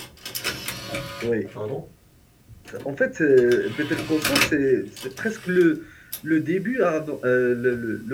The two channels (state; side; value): identical; both; correlation 1.00